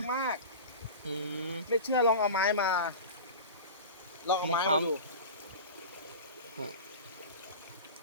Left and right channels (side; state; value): both; inverted; correlation -0.31